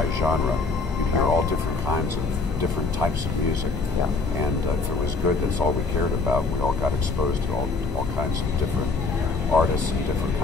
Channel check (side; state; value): right; quieter; 3.8 dB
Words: You'd hear all different kinds of different types of music. Yeah. And if it was good, that's all we cared about. We all got exposed to all kinds of different artists and different